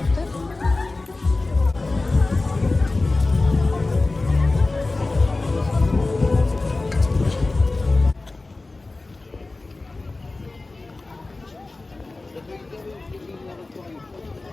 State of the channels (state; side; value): quieter; right; 3.3 dB